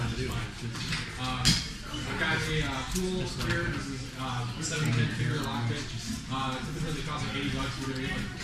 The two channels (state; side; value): identical; both; correlation 1.00